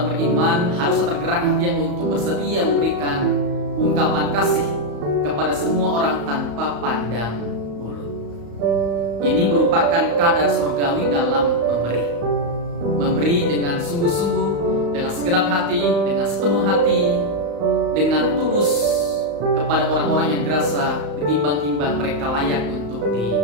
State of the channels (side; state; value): left; late; 35 ms